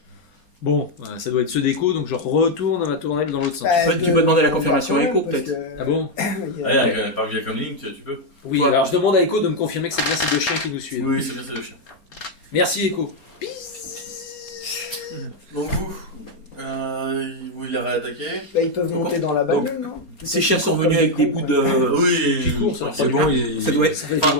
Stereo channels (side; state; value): right; late; 4.3 ms